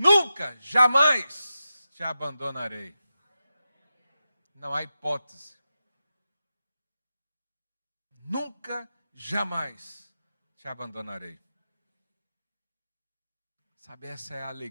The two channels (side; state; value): both; inverted; correlation -0.91